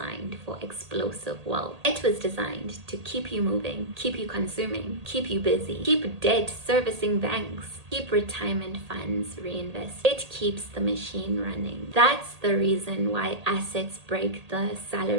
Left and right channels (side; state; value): left; late; 1.8 ms